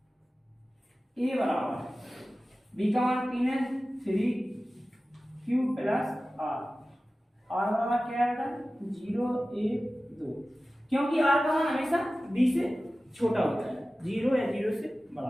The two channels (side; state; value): both; normal; correlation 0.96